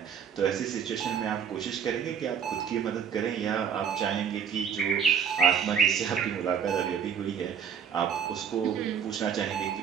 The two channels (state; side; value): quieter; left; 7.7 dB